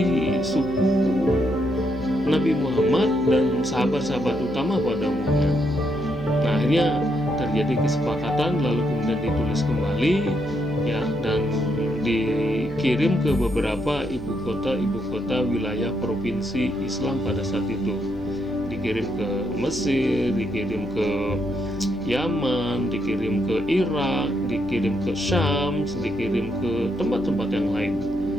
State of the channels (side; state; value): left; noise; hum, 16 dB below the sound